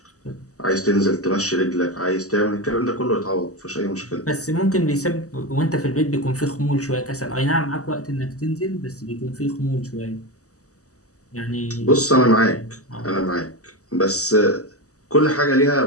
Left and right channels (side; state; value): right; late; 0.66 ms